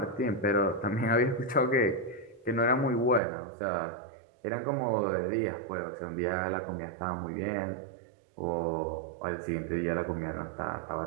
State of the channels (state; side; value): drops out; left; at 3.2 s